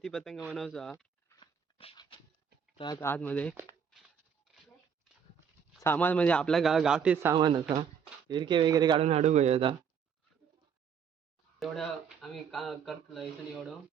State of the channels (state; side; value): quieter; left; 7.2 dB